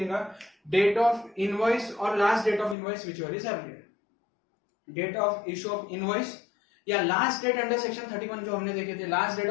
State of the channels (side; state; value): right; drops out; at 2.8 s